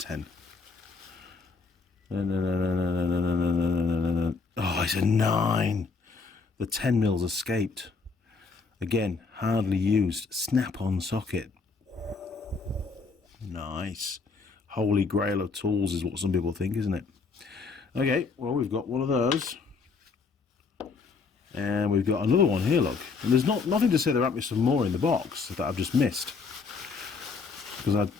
Oh, it's a 9. The 10mm escaped. Again, hardly used. Snap-on socket. Nice. Holy grail of tools is what some people think, isn't it? Okay, well, we've got one of those. And we've got another one here, look. And there's nothing to say there might be some more in the box that I've just missed. Because I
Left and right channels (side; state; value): right; quieter; 4.7 dB